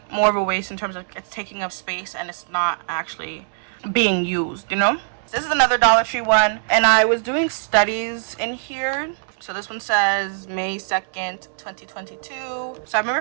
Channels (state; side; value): silent; left; 64 dB below the other